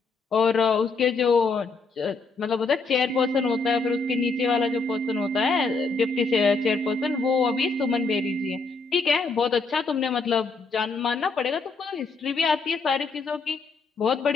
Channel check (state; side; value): quieter; right; 4.1 dB